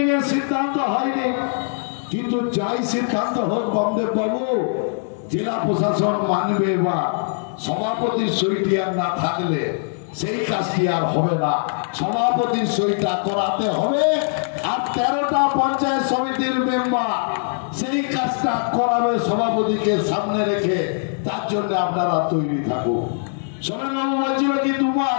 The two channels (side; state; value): right; silent; digital silence